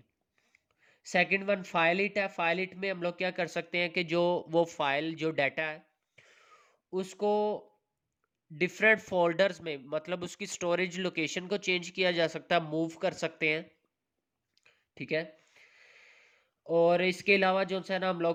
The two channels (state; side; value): identical; both; correlation 1.00